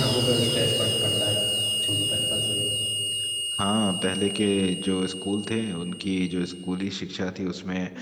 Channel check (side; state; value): both; identical; correlation 1.00